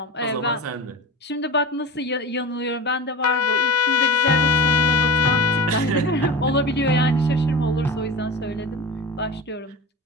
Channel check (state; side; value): normal; both; correlation 0.31